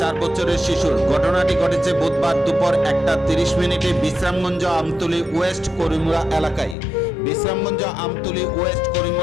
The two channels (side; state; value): right; drops out; at 6.8 s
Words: বছরের শিশুর। ঘটনাটি ঘটেছে বুধবার দুপুর 1:30 বিশ্রামগঞ্জ আমতলী ওয়েস্ট করিমুরা এলাকায়। বিশ্রামগঞ্জ আমতলী ওয়েস্ট